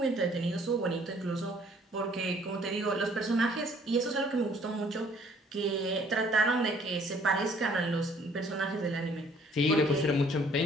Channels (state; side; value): normal; both; correlation 0.60